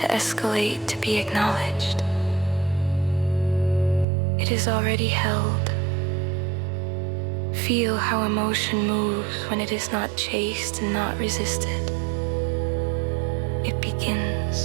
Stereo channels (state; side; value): drops out; left; at 4.0 s